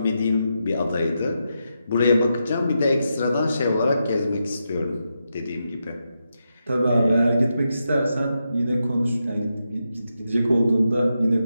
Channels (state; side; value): inverted; both; correlation -0.86